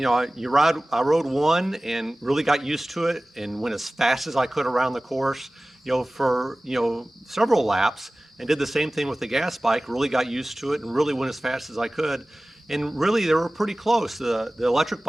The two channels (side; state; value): both; normal; correlation 0.98